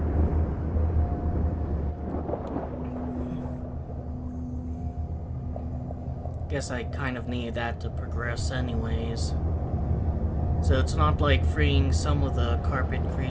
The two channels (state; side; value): identical; both; correlation 1.00